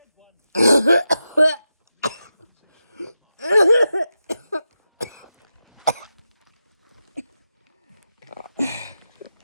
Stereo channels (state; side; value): inverted; both; correlation -0.90